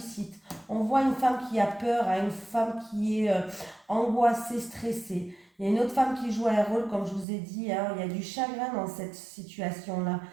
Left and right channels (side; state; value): left; drops out; at 7.2 s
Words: On voit une femme qui a peur, hein, une femme qui est angoissée, stressée. Il y a une autre femme qui joue un rôle, comme je vous ai dit, hein, il y a du chagrin dans cette situation-là.